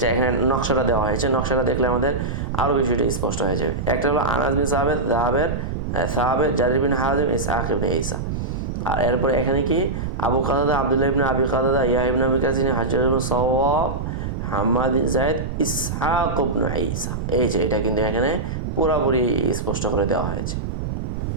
এখানে নকশাটা দেওয়া হয়েছে, নকশাটা দেখলে আমাদের আরও বিষয়টা স্পষ্ট হয়ে যাবে। একটা হলো আনাস বিন সাহাবের জারির বিন হাজিম ইসহাক ইবনে ঈসা। আর এরপরে এখানে কি আবু কাতাদা আব্দুল্লাহ ইবনে আবি কাতাদা ইয়াহইয়া ইবনে আবি কাসির হাজ্জাজ ইবনে সাওয়াব হাম্মাদ বিন যায়েদ ইসহাক ইবনে ঈসা। এই যে এটা কিন্তু এখানে পুরোপুরি স্পষ্ট করে দেওয়া হয়েছে।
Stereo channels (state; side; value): noise; right; rumble, 3 dB below the sound